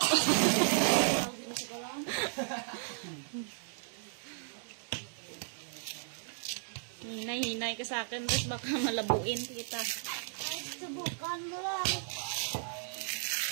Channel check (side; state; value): left; silent; digital silence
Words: Hinay-hinay ka sa akin, tapos baka malabuin kita. Ay, subukan mo lang.